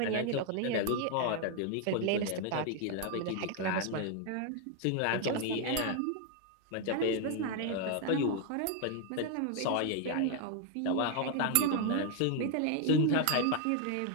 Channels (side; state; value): both; different; correlation 0.00